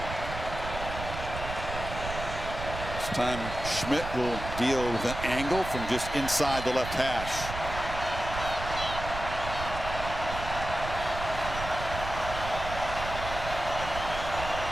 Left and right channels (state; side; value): noise; right; rumble, 8 dB below the sound